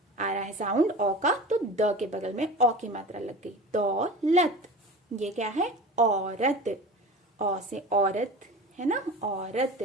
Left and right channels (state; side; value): normal; both; correlation 0.35